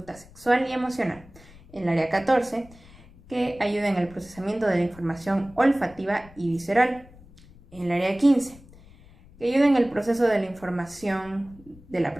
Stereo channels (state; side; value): noise; left; rumble, 23 dB below the sound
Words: sexual y emocional. El área 14, que ayuda en el procesamiento de la información olfativa y visceral. El área 15, que ayuda en el proceso de la información de la